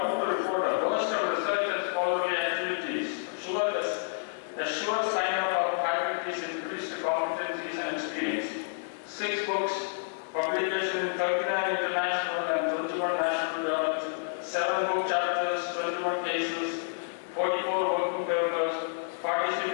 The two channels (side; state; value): right; silent; 58 dB below the other